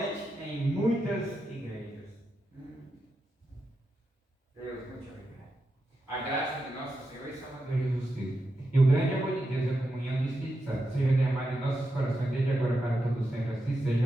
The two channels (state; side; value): normal; both; correlation 0.87